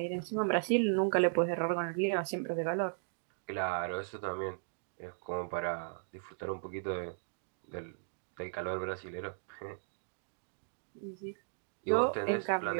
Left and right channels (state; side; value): silent; left; digital silence